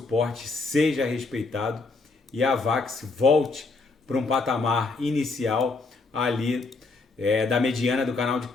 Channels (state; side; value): quieter; right; 3.8 dB